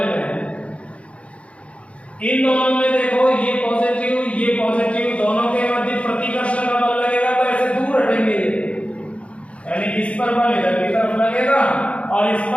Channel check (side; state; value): right; late; 0.062 ms